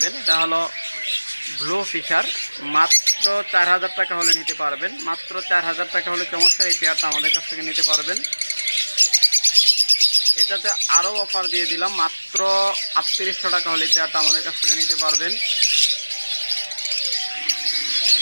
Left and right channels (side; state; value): both; inverted; correlation -1.00